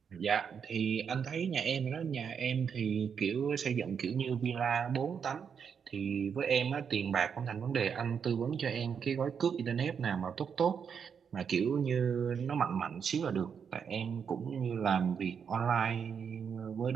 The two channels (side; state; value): left; quieter; 6.9 dB